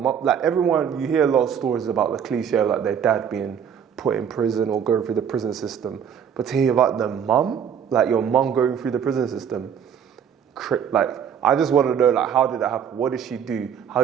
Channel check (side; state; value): left; quieter; 8.1 dB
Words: like everyone, you hear a lot of stories about the cliche of like their dad being put in prison or going through the prison system. But to hear about the mum, like your mum going through the prison system, like, I just want to know, like, how did that happen? What did she do? How